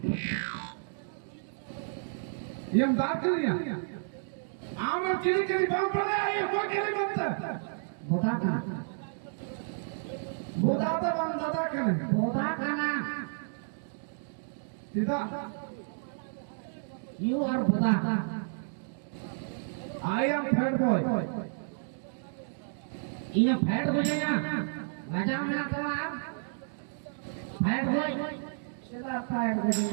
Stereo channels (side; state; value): left; silent; digital silence